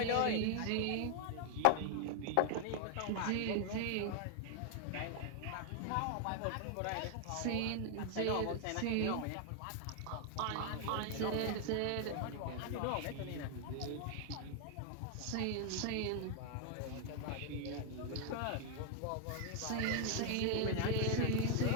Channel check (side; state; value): both; different; correlation 0.00